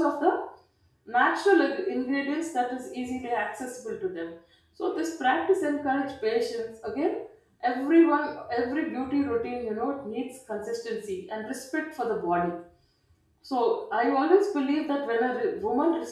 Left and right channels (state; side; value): identical; both; correlation 1.00